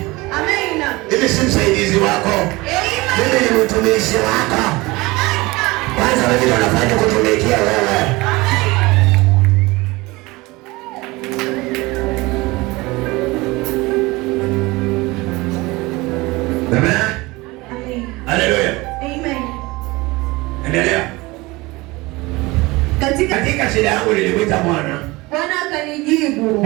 Amen. Mimi si msaidizi wako. Amen. Mimi ni mtumishi wako. Kwanza wewe ndio unafanya kutumikia wewe. Amen. Hallelujah. Amen. Endelea. Katika shida yangu nilimwita Bwana. Bwana akanijibu.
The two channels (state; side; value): quieter; left; 22.2 dB